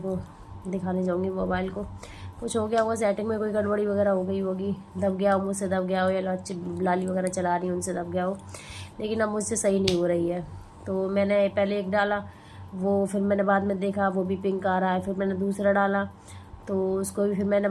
दिखाने जाऊँगी मोबाइल को, कुछ हो गया होगा सेटिंग में, कोई गड़बड़ी वगैरह हो गई होगी, दब गया हो, मुझसे दब गया हो, या लाली वगैरह चला रही हूँ उनसे दब गया हो। लेकिन अब मुझसे सही नहीं हो रही है। तो मैंने पहले एक डाला, वो फिर मैंने बाद में देखा वो भी पिंक आ रहा है। फिर मैंने दूसरा डाला तो उसको भी फिर मैंने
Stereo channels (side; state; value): both; identical; correlation 1.00